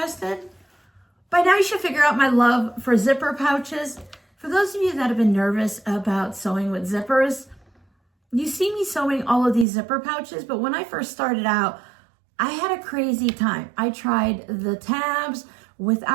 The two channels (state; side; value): drops out; left; at 9.7 s